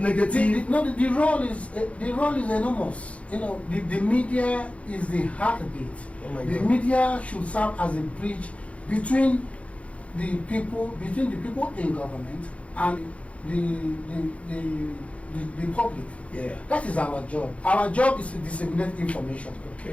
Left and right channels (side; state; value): right; late; 0.064 ms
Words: The role is enormous. You know, the media is the heartbeat. Oh my the God. media should serve as a bridge between the people in government and the public. Yeah. That is our job. Our job is to disseminate information.